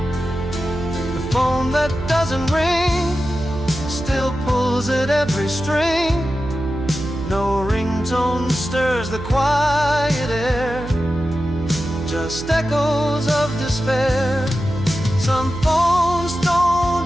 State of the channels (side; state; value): right; noise; hum, 11 dB below the sound